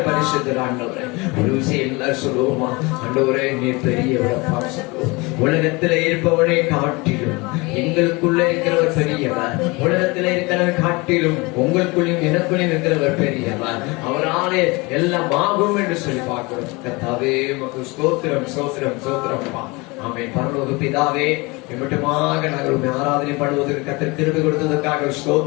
பரிசுத்தர். ஆண்டவரே, ஒரு விஷயம் எல்லாரும் சொல்லுவோமா, ஆண்டவரே நீ பெரியவரப்பா சொல்லுவோம். உலகத்துல இருப்பவனை காட்டிலும் எங்களுக்குள்ள இருக்கிறவர் பெரியவர். உலகத்துல இருக்கிறவர் காட்டிலும் உங்களுக்குள்ளும் எனக்குள்ளும் இருக்கிறவர் பெரியவர். அவராலே எல்லாம் ஆகும் என்று சொல்லி பார்க்கிறோம். கர்த்தாவே, உமக்கு ஸ்தோத்திரம், ஸ்தோத்திரம், ஸ்தோத்திரம்ப்பா. ஆமென். பரலோக பிதாவே, மட்டுமாக நாங்கள் உண்மை ஆராதனை பண்ணுவதற்கு கர்த்தர் கிருபை கொடுத்ததற்காக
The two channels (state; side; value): quieter; right; 25.5 dB